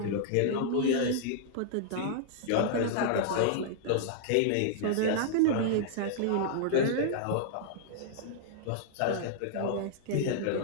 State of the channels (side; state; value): both; different; correlation -0.01